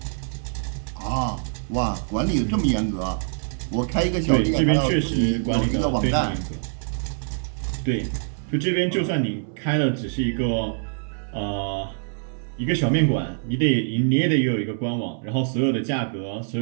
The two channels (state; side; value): silent; left; 61 dB below the other